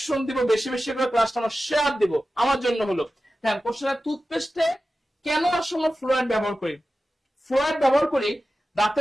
দিব, বেশি বেশি করে ক্লাসটা আমরা শেয়ার দিব, আমার জন্য হলো। হ্যাঁ, কোশ্চেন টুথপেস্টে কেন আসলে ফ্লোরাইড ব্যবহার করি? ফ্লোরাইড ব্যবহার করি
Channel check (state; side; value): normal; both; correlation 0.94